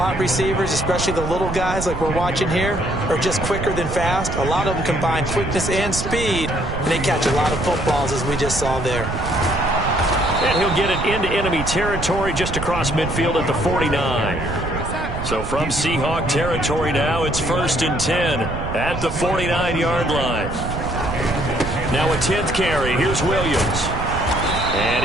receivers, especially the little guys like we're watching here, are just quicker than fast. A lot of them combine quickness and speed, and they catch a lot of footballs, as we just saw there. And he'll get it into enemy territory just across midfield at the 49. So from Seahawk territory now, it's 1st and 10 at the 49-yard line. Now a 10th carry. Here's Williams. And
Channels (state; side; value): noise; right; rumble, 6 dB below the sound